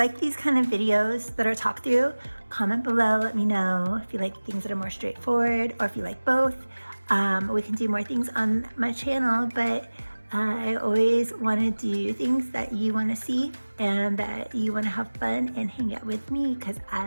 these kind of videos that are talk through, comment below, let me know if you like things that are more straightforward or if you like both. We can do more things on my channel, but I always want to do things that you want to see and that you want to have fun and hang out with me because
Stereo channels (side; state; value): both; inverted; correlation -1.00